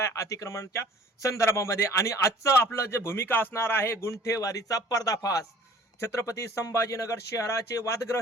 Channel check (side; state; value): both; normal; correlation 0.51